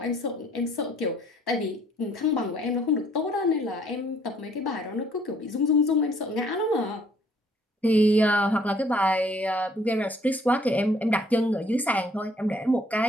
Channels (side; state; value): both; normal; correlation 0.62